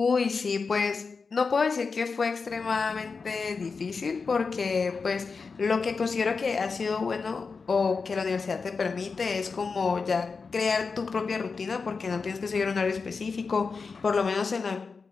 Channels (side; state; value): right; quieter; 4.8 dB